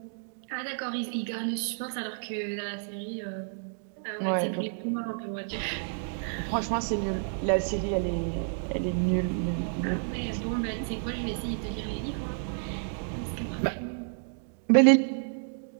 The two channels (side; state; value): left; silent; digital silence